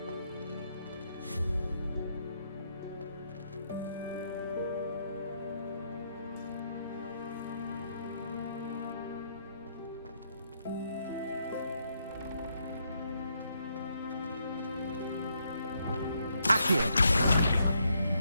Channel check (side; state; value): both; inverted; correlation -0.76